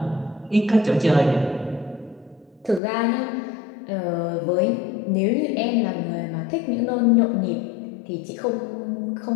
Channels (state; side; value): drops out; right; at 2.8 s